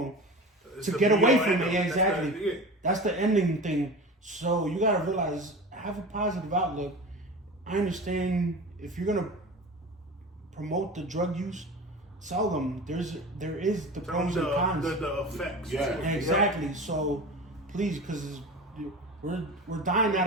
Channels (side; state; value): both; normal; correlation 0.33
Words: to get away from it. Exactly. That's the ending thing. So you gotta realize, have a positive outlook. I understand if you're gonna promote the drug use, tell them there is the pros and cons. The effects. Yeah. Exactly. So please, because we're dying